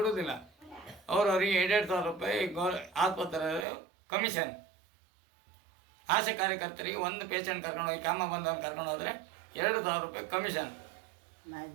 ಅವ್ರಿಗೆ 2,000 ರೂಪಾಯಿ ಆಸ್ಪತ್ರೆ ಕಮಿಷನ್. ಆಶಾ ಕಾರ್ಯಕರ್ತರಿಗೆ ಒಂದು ಪೇಷಂಟ್ ಕರ್ಕೊಂಡು ಹೋಗಿ ಕೆಮ್ಮ ಬಂದವನು ಕರ್ಕೊಂಡು ಹೋದರೆ 2,000 ರೂಪಾಯಿ ಕಮಿಷನ್.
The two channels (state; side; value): drops out; left; at 3.7 s